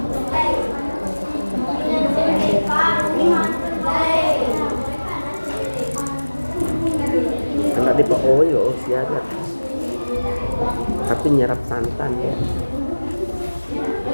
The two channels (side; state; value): both; inverted; correlation -1.00